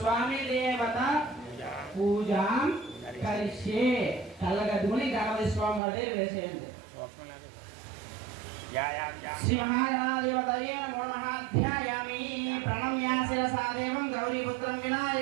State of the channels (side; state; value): left; drops out; at 5.8 s